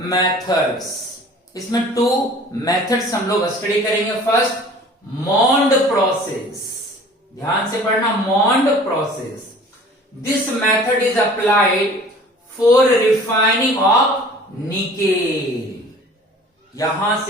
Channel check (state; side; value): normal; both; correlation 0.47